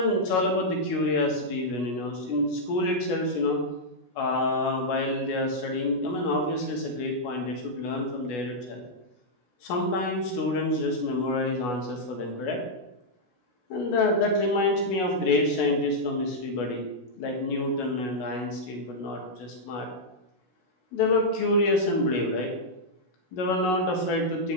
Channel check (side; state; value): right; late; 16 ms